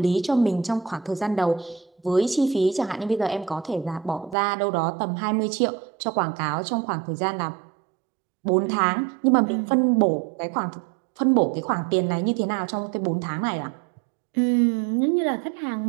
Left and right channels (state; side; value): drops out; left; at 4.4 s